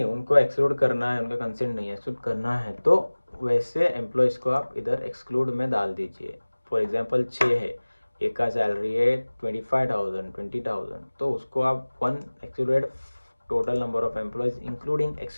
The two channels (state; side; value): inverted; both; correlation -1.00